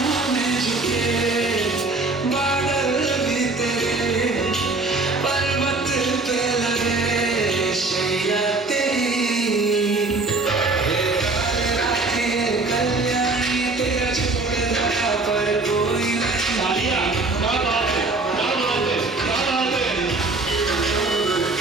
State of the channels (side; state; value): left; quieter; 3.4 dB